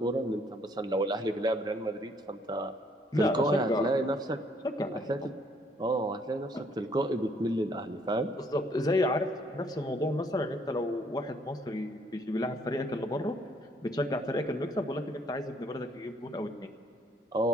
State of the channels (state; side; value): normal; both; correlation 0.65